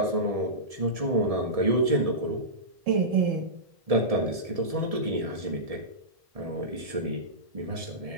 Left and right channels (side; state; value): left; late; 1.7 ms